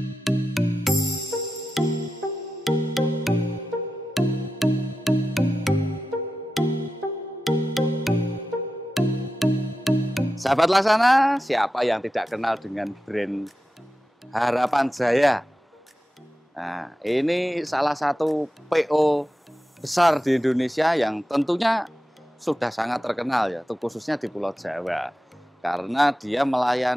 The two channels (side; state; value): both; normal; correlation 0.92